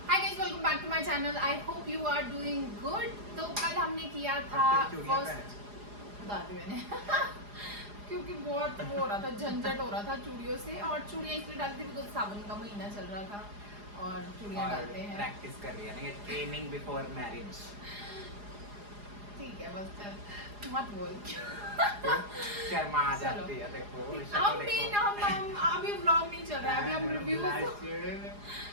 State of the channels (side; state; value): left; late; 4.9 ms